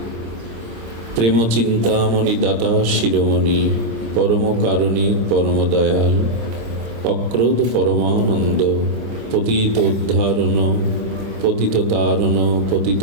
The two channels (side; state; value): left; late; 26 ms